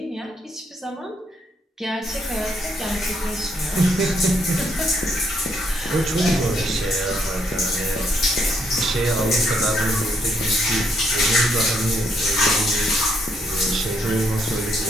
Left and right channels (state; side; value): normal; both; correlation 0.73